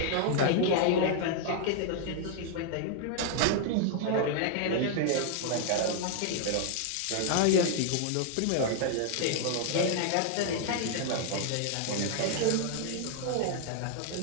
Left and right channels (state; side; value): different; both; correlation 0.00